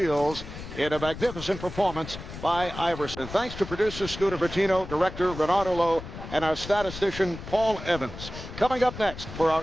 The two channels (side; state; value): left; noise; rumble, 11 dB below the sound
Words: in a magnificent performance by Iverson. And thanks to producer Scooter Bertino, director Renato Lowe, and our statistician Paul Evans. Coming up next for our